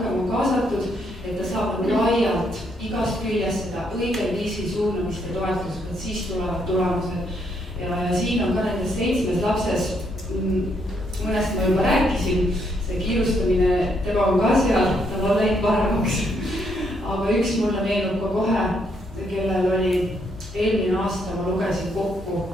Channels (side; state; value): both; normal; correlation 0.74